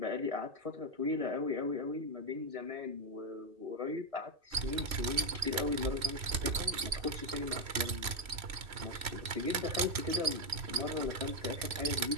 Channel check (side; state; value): left; late; 3.0 ms